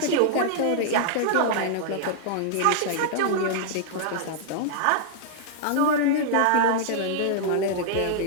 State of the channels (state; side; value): different; both; correlation -0.01